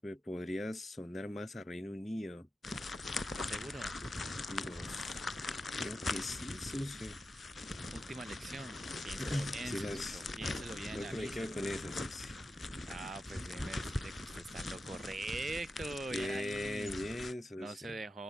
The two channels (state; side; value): normal; both; correlation 0.90